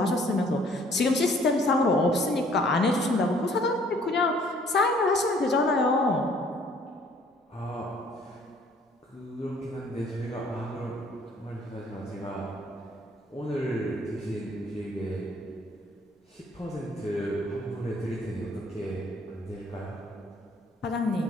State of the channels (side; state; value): both; normal; correlation 0.59